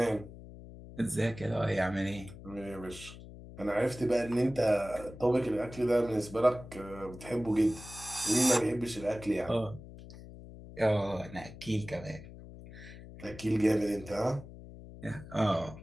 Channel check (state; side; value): noise; left; hum, 15 dB below the sound